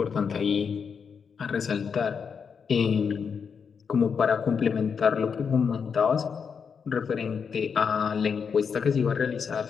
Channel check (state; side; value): quieter; right; 6.3 dB